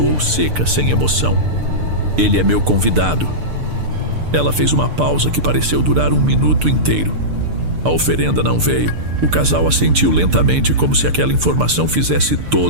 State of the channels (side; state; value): left; late; 6.7 ms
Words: seca, sem emoção. "Ele é meu convidado." Ela fez uma pausa que pareceu durar 1 minuto inteiro. A oferenda não veio. O casal assentiu lentamente, como se aquela informação fizesse